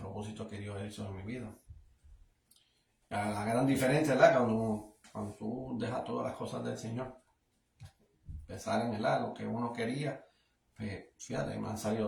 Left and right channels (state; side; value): identical; both; correlation 1.00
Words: que Dios hizo en mi vida. La gran diferencia, ¿verdad? Cuando tú dejas todas las cosas del Señor, pensar en lo que uno quería, pues fíjate, me han